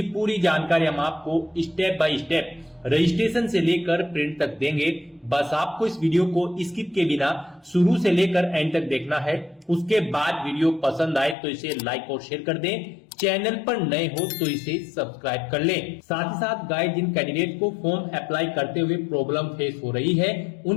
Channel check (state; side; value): drops out; right; at 11.4 s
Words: पूरी जानकारी हम आपको स्टेप बाय स्टेप रजिस्ट्रेशन से लेकर प्रिंट तक देंगे। बस आपको इस वीडियो को स्किप के बिना शुरू से लेकर एंड तक देखना है। उसके बाद वीडियो पसंद आए तो इसे लाइक और शेयर कर दें। चैनल पर नए हो तो इसे सब्सक्राइब कर लें। साथ ही साथ गाइस, जिन कैंडिडेट को फॉर्म अप्लाई करते हुए प्रॉब्लम फेस हो रही है,